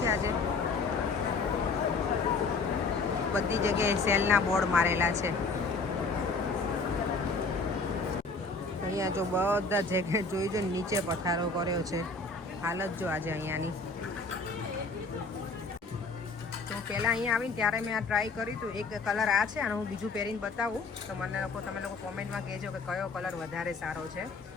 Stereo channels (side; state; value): right; quieter; 3.9 dB